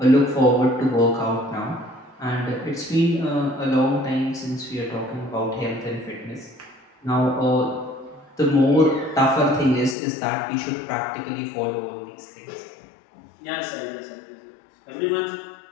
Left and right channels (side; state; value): right; drops out; at 10.0 s